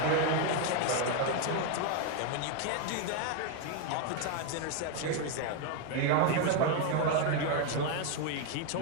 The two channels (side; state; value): both; different; correlation 0.01